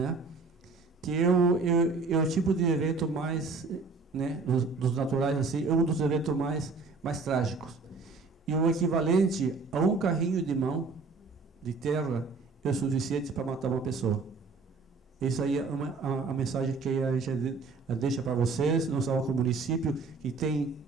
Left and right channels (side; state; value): left; quieter; 4.2 dB